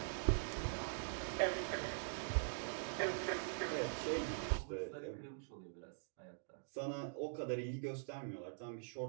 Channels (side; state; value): left; silent; digital silence